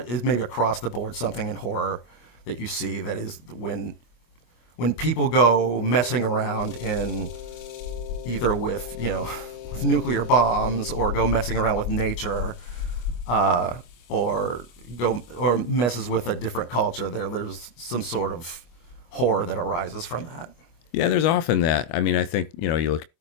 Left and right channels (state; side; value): late; right; 25 ms